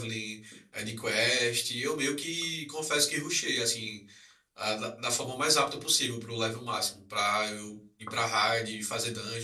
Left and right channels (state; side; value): identical; both; correlation 1.00